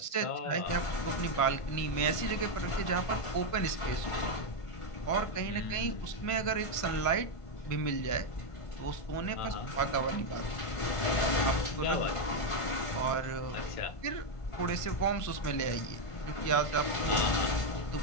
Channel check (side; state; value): right; late; 1.5 ms